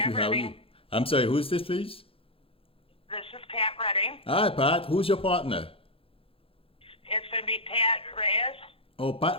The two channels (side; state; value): right; late; 0.27 ms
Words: you. Pat How are you? Redding. I'm sorry, who's this, please? This is Pat Redding. Hi, Pat. Who's your partner? It's going to be Pat Reyes. Oh, Pat